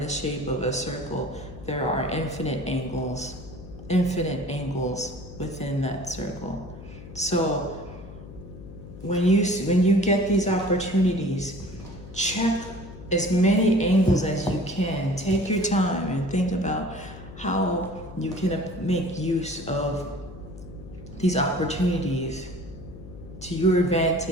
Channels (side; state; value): left; noise; hum, 15 dB below the sound